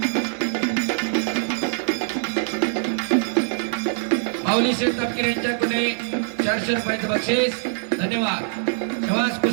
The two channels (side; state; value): left; silent; digital silence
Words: माऊली शेठ तापकीर यांच्याकडे 400 रुपयाचं बक्षीस. धन्यवाद. शबास,